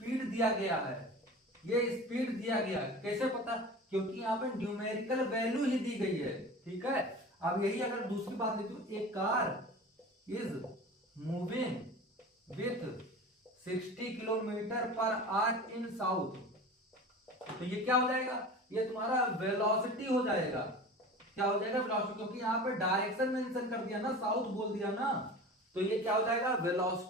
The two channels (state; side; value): normal; both; correlation 0.35